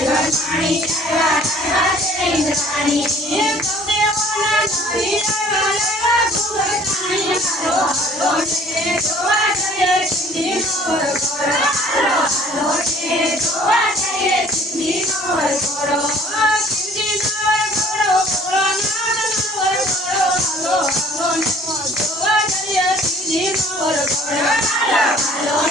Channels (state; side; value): normal; both; correlation 0.54